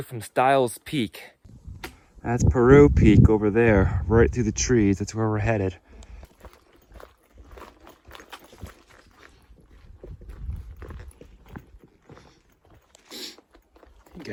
from Stiles Peak. That's Peru Peak over there, right through the trees. That's where we're headed.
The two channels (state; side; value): identical; both; correlation 1.00